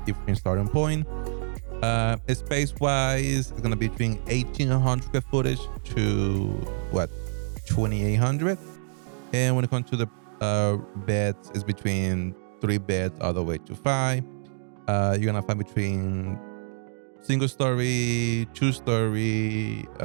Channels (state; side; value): silent; left; digital silence